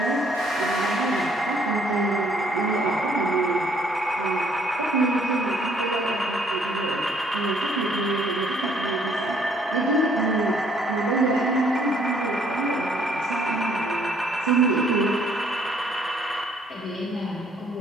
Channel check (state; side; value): normal; both; correlation 0.64